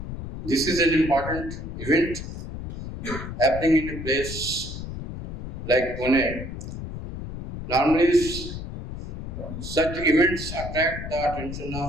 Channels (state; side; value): noise; left; rumble, 8 dB below the sound